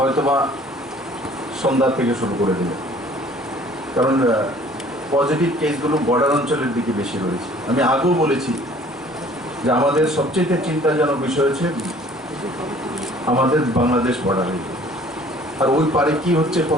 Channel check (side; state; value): both; normal; correlation 0.53